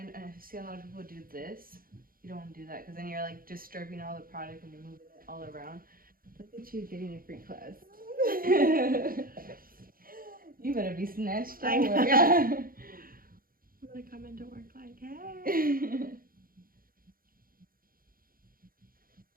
see a lot of people do this. You don't want to do that because then you're like disturbing all the product and you're moving it all around. Look at you getting a free class. You better be snatched I out. know. I'm gonna come into work like, hey.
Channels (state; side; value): late; left; 0.42 ms